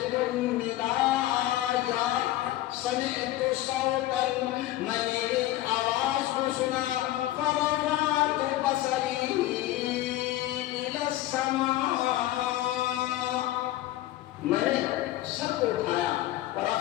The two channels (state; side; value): quieter; right; 15.3 dB